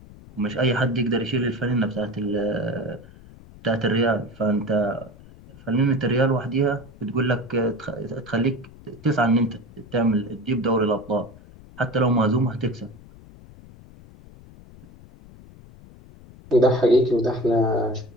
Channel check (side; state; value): left; noise; rumble, 21 dB below the sound